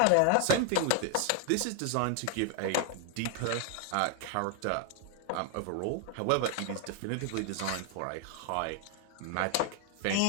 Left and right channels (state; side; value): different; both; correlation 0.00